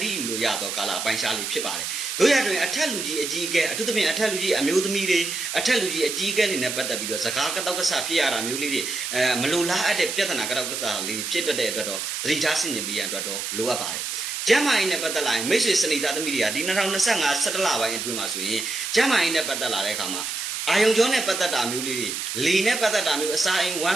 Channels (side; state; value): right; noise; hiss, 4 dB below the sound